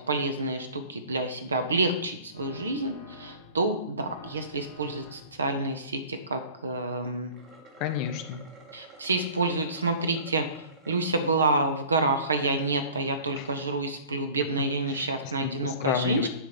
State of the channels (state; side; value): inverted; both; correlation -0.44